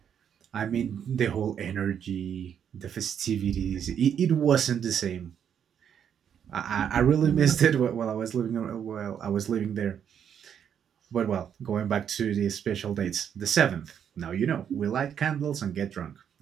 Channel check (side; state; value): left; quieter; 8.5 dB